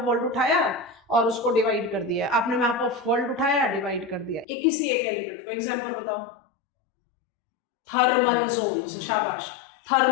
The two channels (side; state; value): right; drops out; at 4.5 s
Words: वर्ल्ड उठाया और उसको डिवाइड कर दिया, आपने मैप ऑफ वर्ल्ड उठाया डिवाइड कर दिया एक किसी एक एलिमेंट को। एग्जांपल बताओ, थर्मल जोन्स, शाबाश।